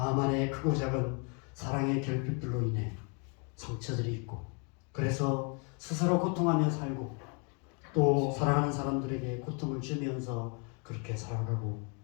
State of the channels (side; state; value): right; quieter; 35.9 dB